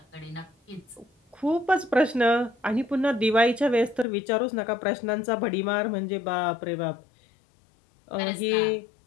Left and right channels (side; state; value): right; drops out; at 4.0 s